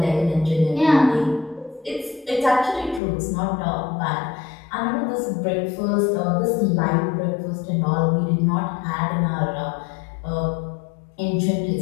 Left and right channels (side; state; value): right; drops out; at 3.0 s